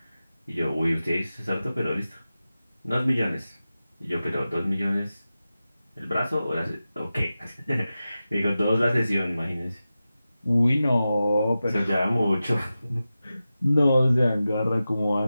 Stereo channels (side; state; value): both; inverted; correlation -0.94